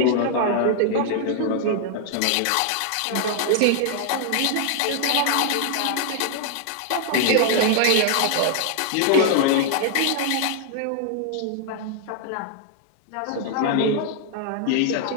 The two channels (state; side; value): different; both; correlation 0.00